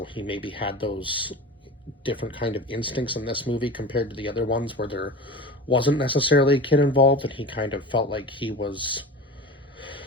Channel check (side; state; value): both; normal; correlation 0.33